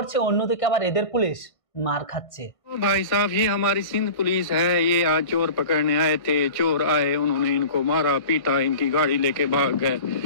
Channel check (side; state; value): right; late; 1.5 ms